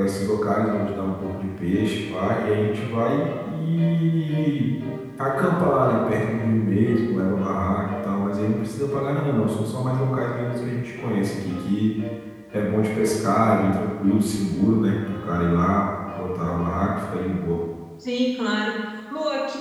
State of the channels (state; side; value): identical; both; correlation 1.00